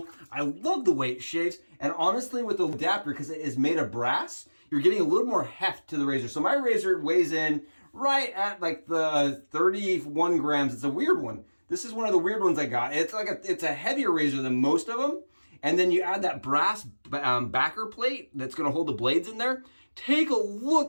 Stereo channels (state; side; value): inverted; both; correlation -1.00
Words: I love the way it shaves. And honestly, with the adapter, because it is made of brass, you're getting a little more heft to the razor. So my razor weighs in right at like the 31 grams. It's a weird one. This is one of the weird ones I got. It's like it's a heavier razor than most of them. And then you add that brass backer plate that's gonna hold the blades in there. Take a